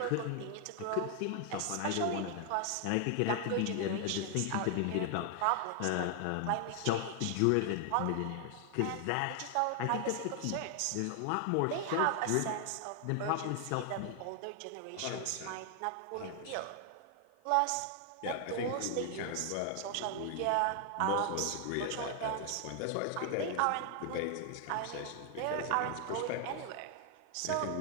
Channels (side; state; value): both; different; correlation 0.00